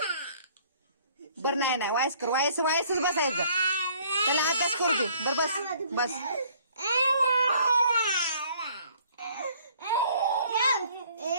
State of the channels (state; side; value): inverted; both; correlation -0.59